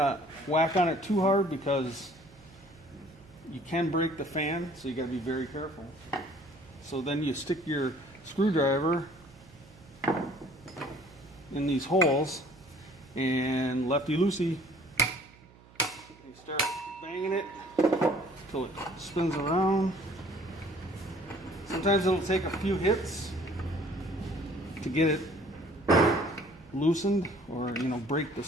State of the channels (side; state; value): right; noise; hum, 25 dB below the sound